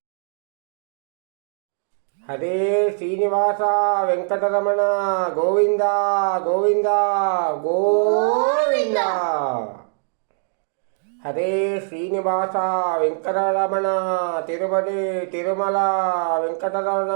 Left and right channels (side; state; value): left; silent; digital silence